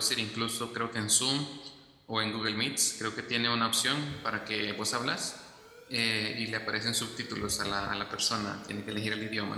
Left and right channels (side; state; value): both; identical; correlation 1.00